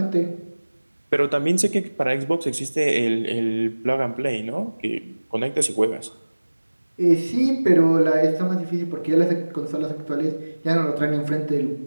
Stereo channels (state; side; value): inverted; both; correlation -1.00